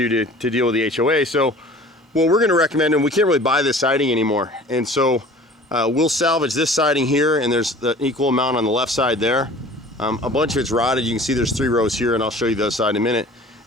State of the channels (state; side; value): normal; both; correlation 0.46